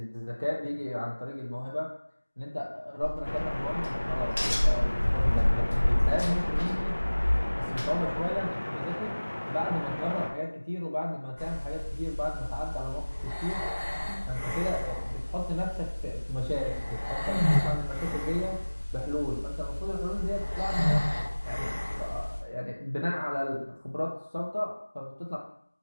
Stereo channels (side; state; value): both; inverted; correlation -1.00